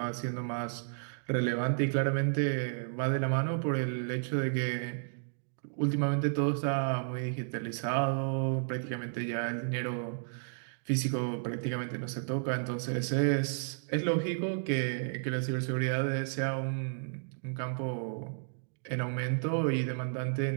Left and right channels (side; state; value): left; silent; digital silence